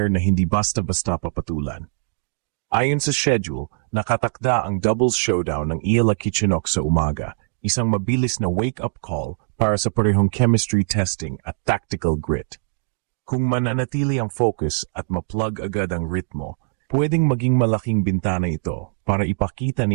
na hindi basta-basta papatulan. Ayon sa schedule, nakatakda ang doubles showdown ng Iela Kichenok sa umaga, isang mabilis na wake-up call para sa parehong chemistry testing at tactical grit. Kung mananatili ang focus at ma-plug agad ang ritmo, pwedeng maging malaking bintana ito para ipakita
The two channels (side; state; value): left; silent; digital silence